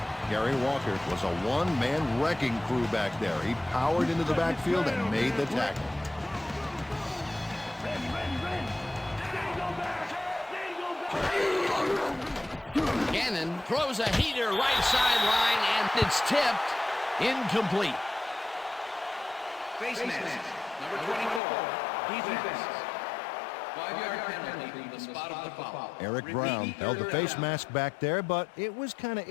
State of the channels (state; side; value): drops out; right; at 21.4 s